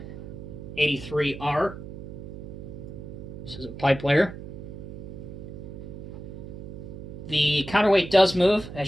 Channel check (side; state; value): right; noise; hum, 11 dB below the sound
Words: This is a pipe layer. The counterweight does move,